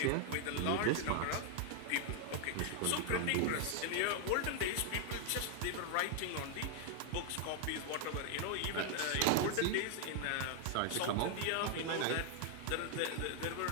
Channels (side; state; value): both; different; correlation 0.00